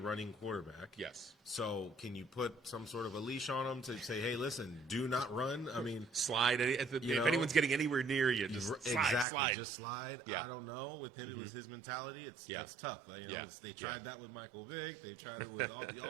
quarterback. Yes. So can you put some sort of a leash on him to say, hey, listen, do not run? Slide. If anyone's getting anywhere near you, just slide. Just slide. Yeah. I don't know. With him, it was his mentality. That's tough. They tried that with Michael Vick. They tried it with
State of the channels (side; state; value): left; drops out; at 9.2 s